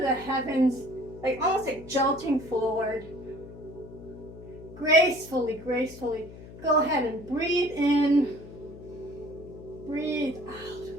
heavens, like almost like jolting forward. Gracefully. Go ahead and breathe in. Breathe out.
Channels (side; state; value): left; noise; hum, 16 dB below the sound